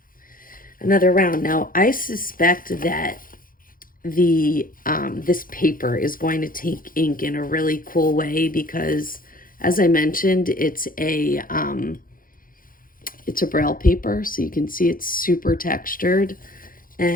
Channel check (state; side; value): late; right; 0.41 ms